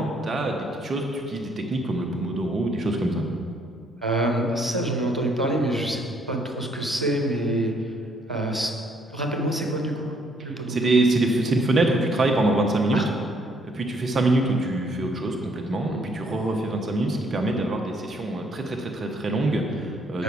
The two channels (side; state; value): both; normal; correlation 0.67